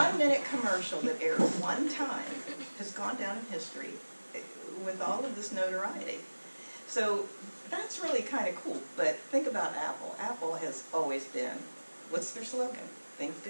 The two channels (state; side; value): inverted; both; correlation -1.00